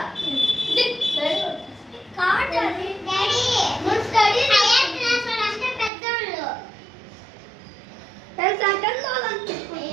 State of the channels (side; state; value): left; drops out; at 5.9 s